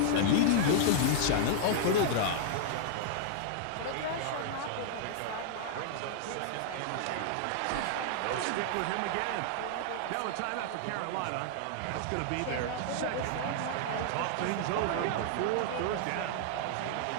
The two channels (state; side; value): different; both; correlation -0.01